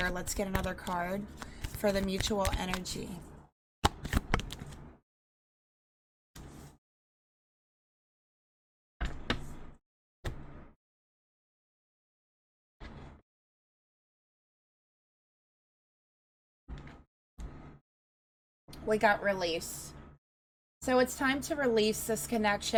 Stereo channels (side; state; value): both; identical; correlation 1.00